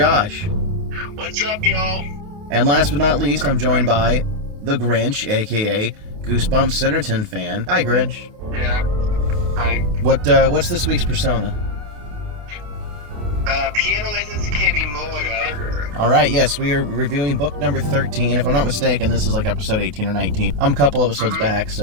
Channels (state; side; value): late; left; 28 ms